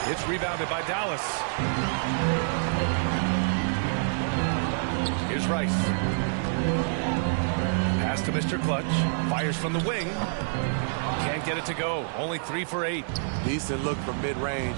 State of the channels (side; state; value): left; silent; digital silence